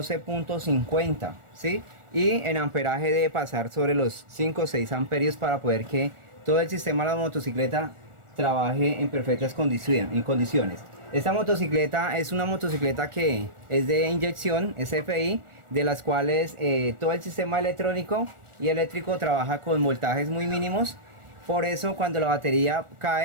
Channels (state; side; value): late; left; 1.4 ms